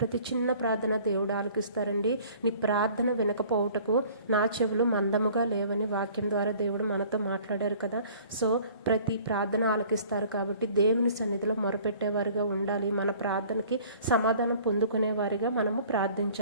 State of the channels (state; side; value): inverted; both; correlation -0.51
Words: చిన్న ప్రార్థన దేవుడు ఆలకిస్తారండి. నీ ప్రార్థన వినకపోవుటకు నా చెవులు మందముగా లేవని వాక్యం ద్వారా దేవుడు మనతో మాట్లాడారు కదా. సో ప్రతి ప్రార్థన ఆలకిస్తారు కాబట్టి దేవుని సన్నిధిలో మొరపెట్టేవారిగా ఉండాలి. మన ప్రార్థనకి సమాధానం పొందుకునేవారిగా మనము